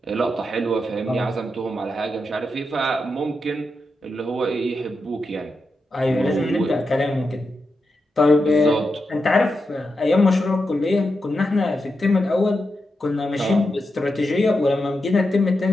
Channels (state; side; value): normal; both; correlation 0.87